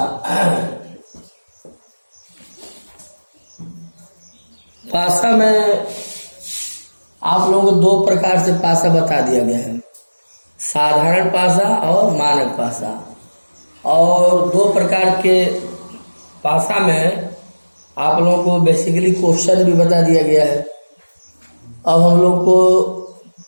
पासा में आप लोगों को दो प्रकार से पासा बता दिया गया है, साधारण पासा और मानक पासा। और दो प्रकार के पासा में आप लोगों को बेसिकली क्वेश्चन भी बता दिया गया है। अब हम लोग को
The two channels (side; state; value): both; inverted; correlation -1.00